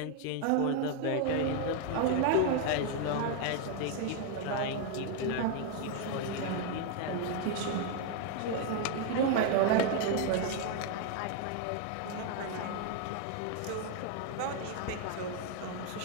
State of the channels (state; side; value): different; both; correlation 0.00